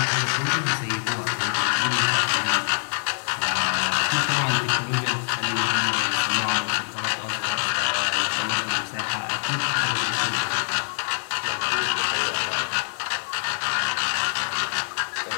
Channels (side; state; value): right; silent; digital silence